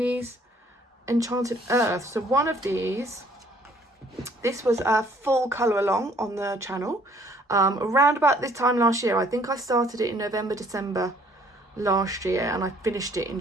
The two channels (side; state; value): both; normal; correlation 0.60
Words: Enchanted Earth. So one of these, this was a full colour along on the channel. Around about this time last year. I think I started it in November, December last year, and I finished it in